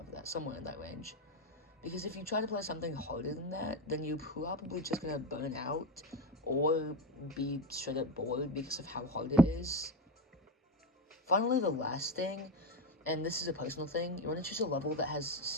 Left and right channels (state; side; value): normal; both; correlation 0.17